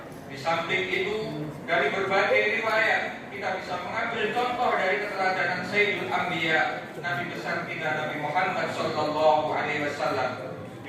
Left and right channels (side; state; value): both; identical; correlation 1.00